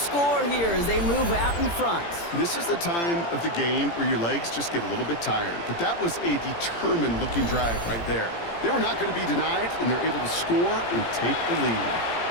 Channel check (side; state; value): right; late; 17 ms